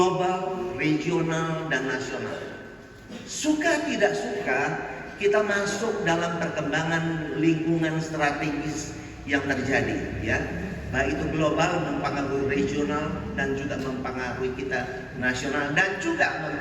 regional dan nasional. Suka tidak suka kita masuk dalam perkembangan lingkungan strategis yang terjadi, ya. Baik itu global mempengaruhi regional dan juga mempengaruhi kita nasional dan juga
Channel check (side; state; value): both; identical; correlation 1.00